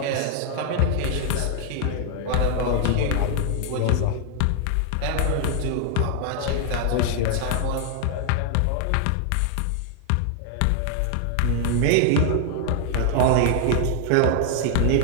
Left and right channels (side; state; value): both; different; correlation 0.00